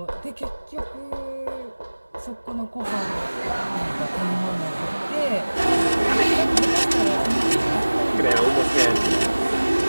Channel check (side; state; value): both; inverted; correlation -1.00